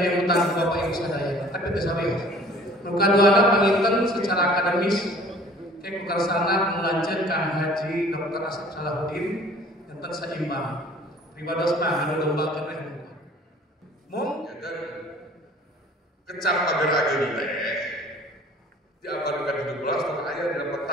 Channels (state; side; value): normal; both; correlation 0.50